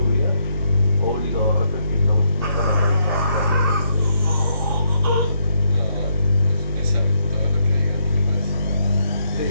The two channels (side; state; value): both; inverted; correlation -0.75